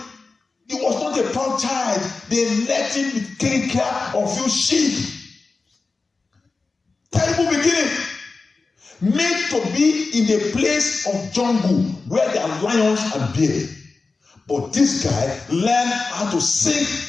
he was not a proud child. They let him take care of few sheep. Terrible beginning. Made to be in a place of jungle where there are lions and bears. But this guy learned how to sing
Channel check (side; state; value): right; quieter; 4.0 dB